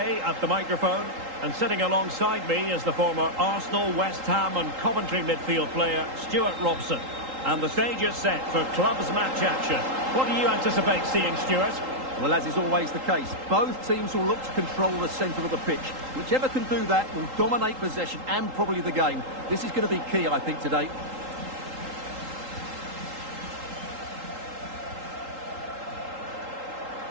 at the microphone, and sitting alongside me is the former Arsenal, West Ham and Coventry midfield player Stuart Robson. And the stage is set for clubs match action. What do you anticipate seeing, Stuart? Well, as is always the case, both teams will look to control the centre of the pitch. Whichever can do that will dominate possession and probably the game. This is going to be key, I think, today.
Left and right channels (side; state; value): left; late; 3.8 ms